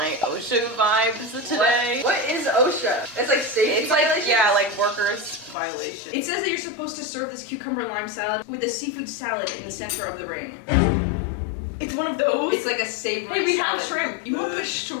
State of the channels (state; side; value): drops out; right; at 5.6 s